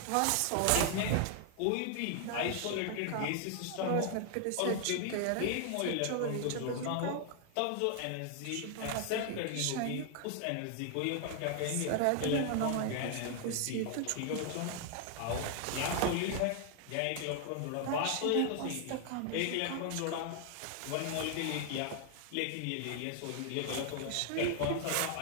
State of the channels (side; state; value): both; different; correlation 0.00